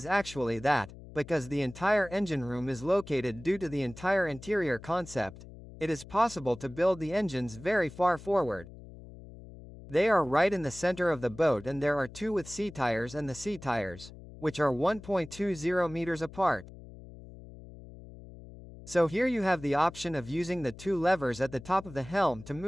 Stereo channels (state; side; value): noise; left; hum, 17 dB below the sound